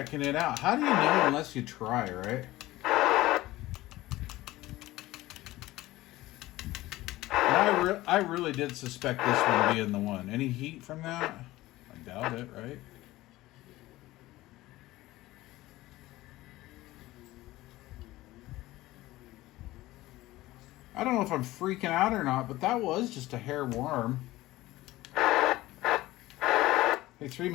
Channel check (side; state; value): right; quieter; 17.5 dB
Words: it out. How do you know unless you try, right? And I really did suspect this one being the one. Any heat from that? I doubt it, right? I don't know if I'm freaking out or not, but that was just a hair warm. Hey,